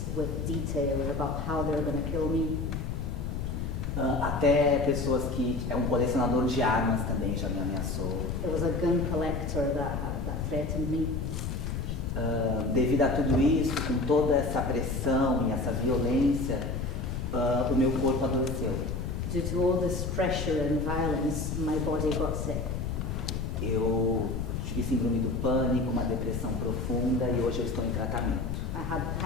with detail about how they were going to kill me. Até pessoas que é um colecionador de armas também já me ameaçou. There was a gun collector that threatened me. Devido a tudo isso, com toda essa pressão e essa violência, o meu corpo adoeceu. Due to all this pressure and violence, my body got sick. Eu tive síndrome do pânico, uma depressão profunda e hoje eu estou em tratamento. I had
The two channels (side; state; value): left; noise; rumble, 3 dB below the sound